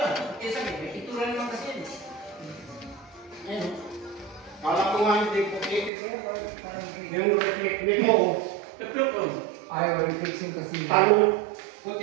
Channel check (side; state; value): left; drops out; at 5.9 s